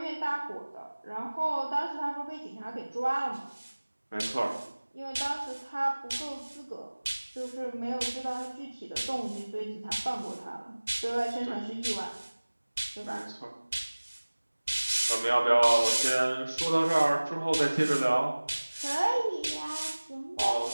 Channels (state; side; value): inverted; both; correlation -1.00